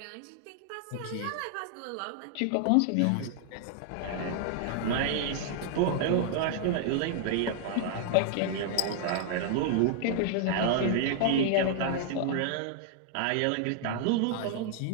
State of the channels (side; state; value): both; different; correlation 0.00